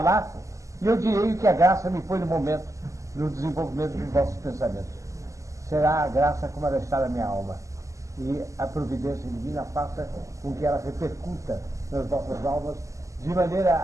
e eu direi que a graça me põe no momento, no desenvolvimento dos vossos pensamentos. Será a graça como ela está na minha alma, e a providência divina faça com que ela repercuta nas vossas almas, de maneira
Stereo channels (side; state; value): left; late; 0.16 ms